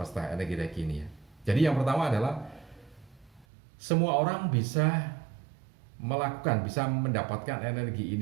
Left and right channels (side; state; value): left; drops out; at 3.5 s